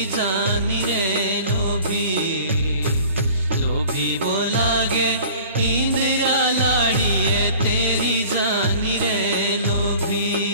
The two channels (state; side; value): inverted; both; correlation -0.46